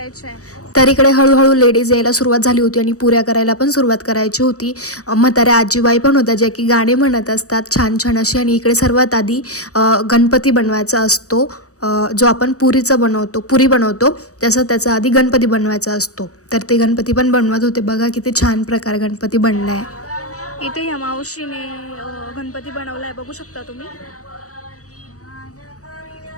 आहे. तर इकडे हळूहळू लेडीज यायला सुरुवात झाली होती आणि पुऱ्या करायला पण सुरुवात करायची होती. म्हाताऱ्या आजीबाई पण होत्या ज्या की गाणे म्हणत असतात छान छान अशी. आणि इकडे सर्वात आधी गणपती बनवायचा असतो, जो आपण पुरी बनवतो त्याचा आधी गणपती बनवायचा असतो. तर ते गणपती पण बनवत होते. बघा किती छान प्रकारे गणपती बनलाय. इथे ह्या मावशीने गणपती बनवलाय, बघू शकता तुम्ही.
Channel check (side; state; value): right; late; 0.66 ms